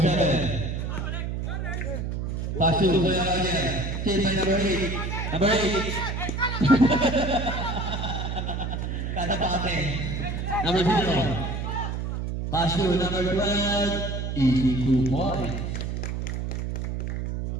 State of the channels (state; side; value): noise; right; hum, 3 dB below the sound